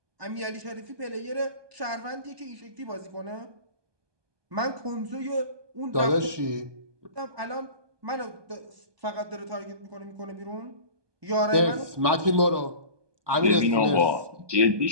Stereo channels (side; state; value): left; late; 1.2 ms